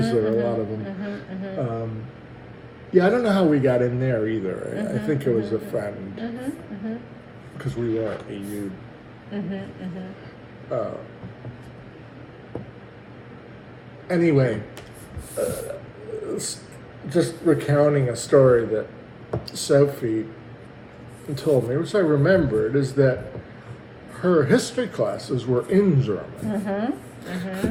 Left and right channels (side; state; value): both; identical; correlation 1.00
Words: there are a lot of them. Yeah, I don't know how we got in there either. I think it was a friend, because we weren't EU. Anyway, just recounting a story that Sophie told me, which I remembered, is that her history classes were in German.